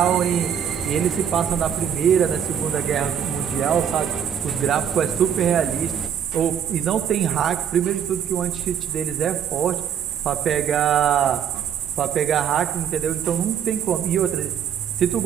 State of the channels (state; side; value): quieter; left; 8.4 dB